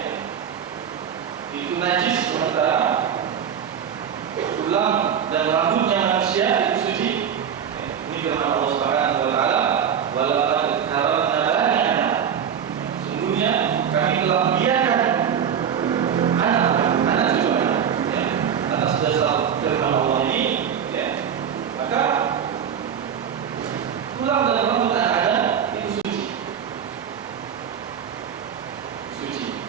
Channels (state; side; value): quieter; left; 8.2 dB